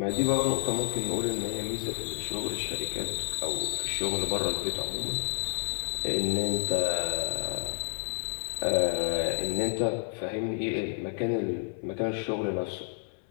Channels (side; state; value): right; silent; 58 dB below the other